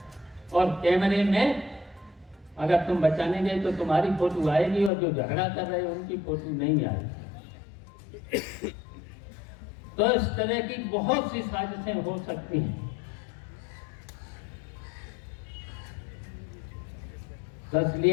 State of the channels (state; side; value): drops out; right; at 4.9 s